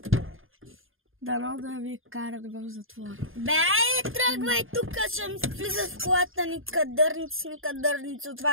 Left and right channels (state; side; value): late; left; 0.59 ms